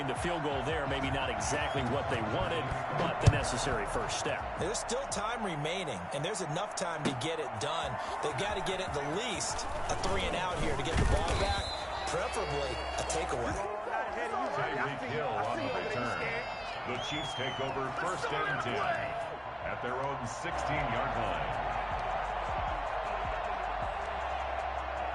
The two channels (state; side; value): identical; both; correlation 1.00